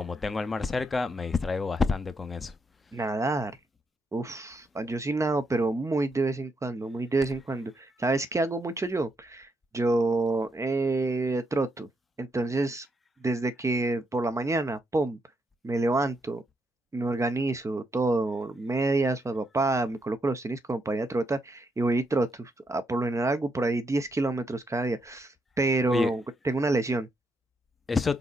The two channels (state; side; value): normal; both; correlation 0.79